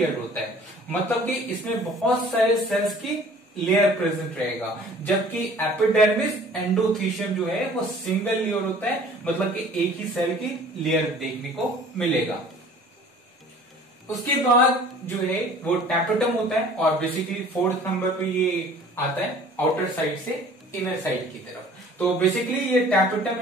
होता है। मतलब कि इसमें बहुत सारे सेल्स की लेयर प्रेजेंट रहेगा, जबकि एपिडर्मिस एंडोथीशियम जो है वो सिंगल लेयर होता है, मतलब कि एक ही सेल की लेयर देखने को मिलेगा। उसके बाद जो है वो टैपेटम होता है और बेसिकली 4th नंबर पे ये आता है आउटर साइड से इनर साइड की तरफ। तो बेसिकली ये टैपेटम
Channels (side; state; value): both; normal; correlation 0.49